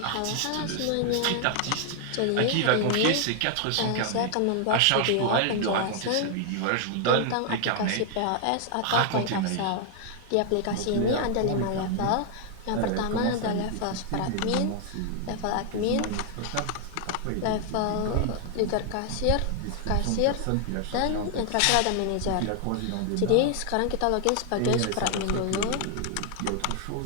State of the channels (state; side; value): different; both; correlation 0.00